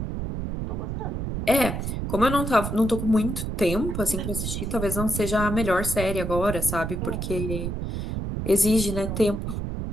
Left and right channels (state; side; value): noise; right; rumble, 3 dB below the sound